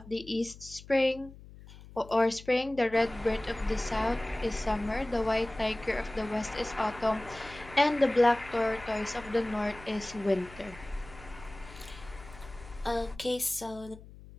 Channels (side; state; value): left; noise; hum, 18 dB below the sound